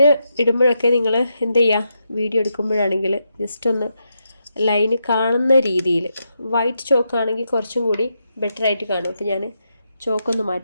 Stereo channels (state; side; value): inverted; both; correlation -0.83